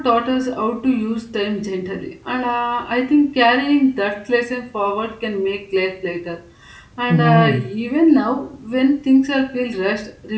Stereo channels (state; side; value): identical; both; correlation 1.00